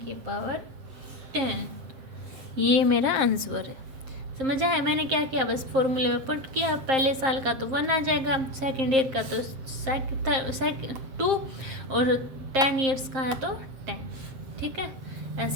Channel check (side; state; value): left; late; 7.6 ms